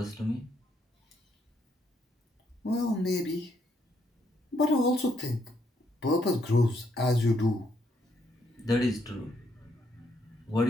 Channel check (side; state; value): both; normal; correlation 0.74